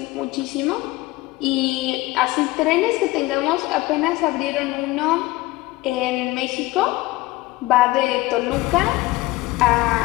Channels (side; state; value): right; quieter; 19.5 dB